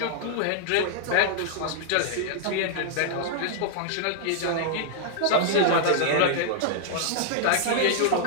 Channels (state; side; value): different; both; correlation -0.01